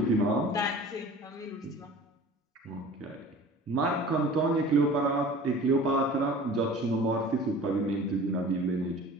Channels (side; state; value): both; normal; correlation 0.42